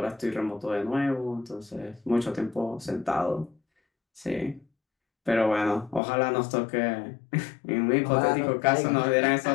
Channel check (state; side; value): drops out; right; at 6.0 s